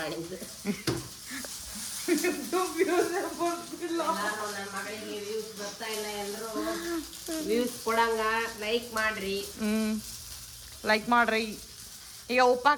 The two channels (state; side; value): identical; both; correlation 1.00